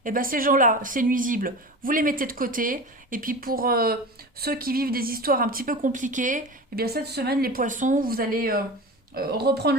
eh ben ces gens-là, c'est nuisible. Vous les mettez de côté. Et puis pour ceux qui vivent des histoires un petit peu compliquées, eh bien cette semaine, les poissons, vous allez reprendre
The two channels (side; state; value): both; normal; correlation 0.31